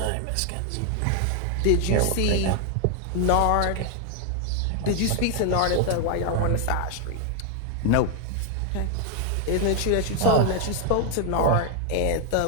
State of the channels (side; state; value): both; different; correlation 0.00